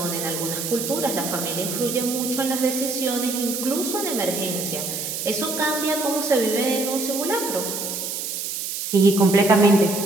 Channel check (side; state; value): right; noise; hiss, 4 dB below the sound